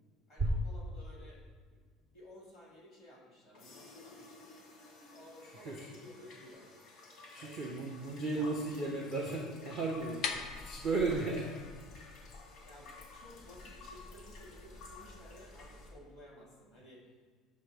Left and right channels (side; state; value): both; normal; correlation 0.49